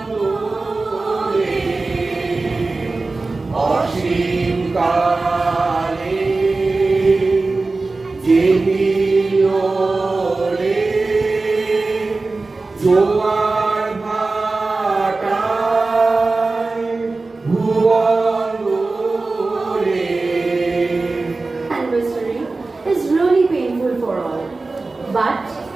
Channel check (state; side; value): quieter; left; 3.6 dB